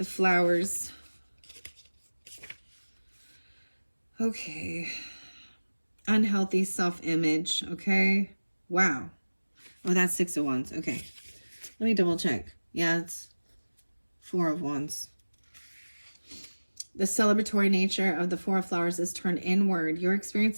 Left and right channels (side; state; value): both; inverted; correlation -1.00